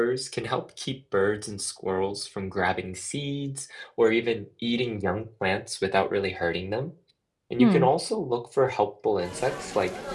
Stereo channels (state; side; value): identical; both; correlation 1.00